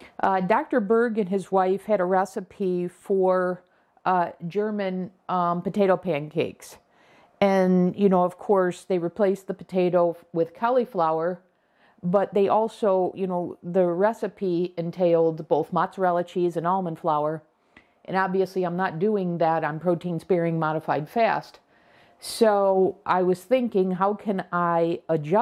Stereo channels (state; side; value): identical; both; correlation 1.00